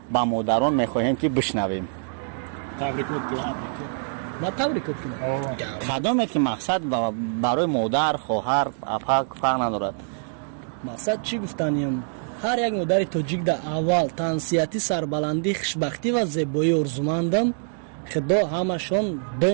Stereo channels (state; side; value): silent; left; digital silence